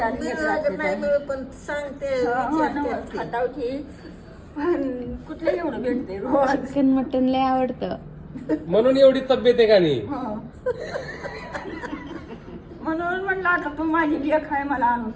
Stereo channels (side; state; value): both; identical; correlation 1.00